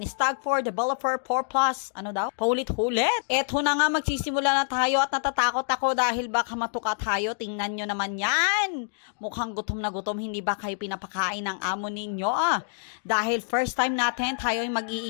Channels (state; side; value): silent; right; digital silence